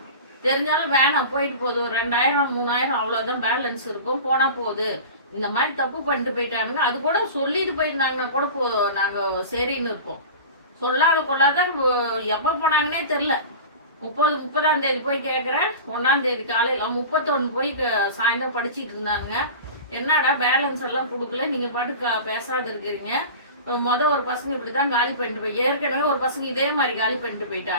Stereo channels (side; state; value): both; inverted; correlation -0.33